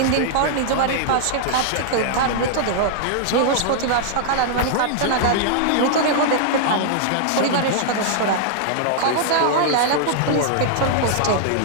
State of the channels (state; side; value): different; both; correlation -0.01